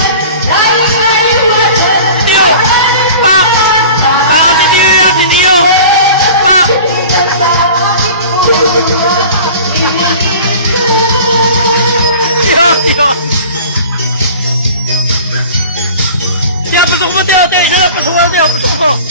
Tiyo! Pak! Pak! Si Tiyo yan! Si Tiyo! Pak! Tiyo! Tiyo! Tiyo! Pasok mo, Tiyo! Tiyo! Isa lang! Pasok mo, Tiyo! Pasok mo!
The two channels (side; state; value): both; inverted; correlation -0.41